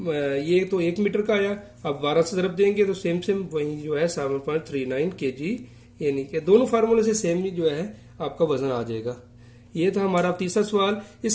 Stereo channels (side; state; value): both; identical; correlation 1.00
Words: ये तो 1 मीटर का आया, अब 12 से ज़रब देंगे तो सेम वही जो है 7.39 kg, यानी कि दोनों फार्मूले से सेम ही जो है आपका वजन आ जाएगा। ये था हमारा तीसरा सवाल।